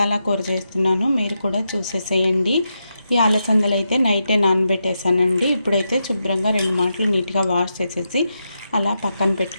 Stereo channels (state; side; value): inverted; both; correlation -0.86